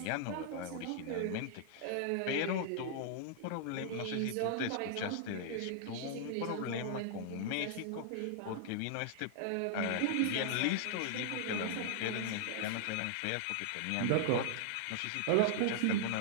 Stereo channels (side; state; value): both; different; correlation -0.01